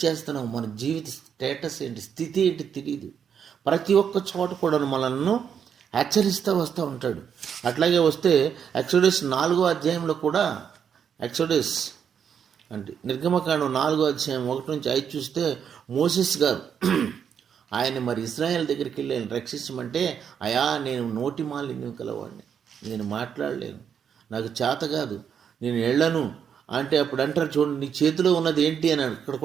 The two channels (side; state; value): left; quieter; 7.8 dB